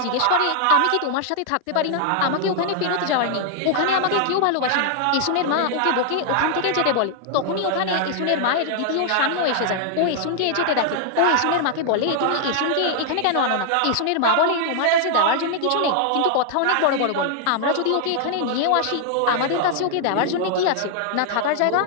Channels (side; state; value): both; different; correlation -0.01